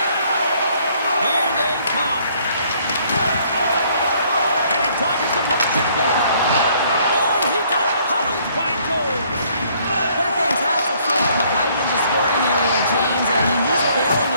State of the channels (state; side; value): inverted; both; correlation -0.63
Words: Here they come. And he dodges the poke check there. Oh, he got puddled by Jones. What a fantastic save from the high-danger scoring area, James. I mean, he's bailing